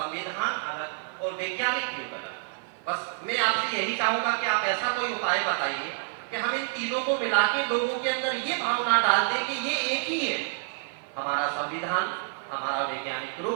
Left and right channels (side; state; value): left; silent; 59 dB below the other